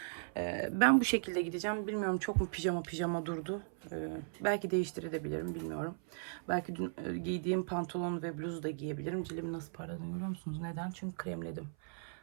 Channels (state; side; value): silent; left; 53 dB below the other